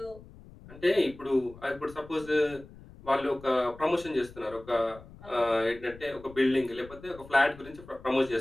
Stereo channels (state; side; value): noise; left; rumble, 19 dB below the sound